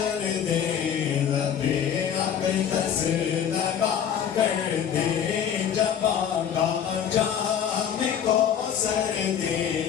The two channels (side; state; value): right; quieter; 8.7 dB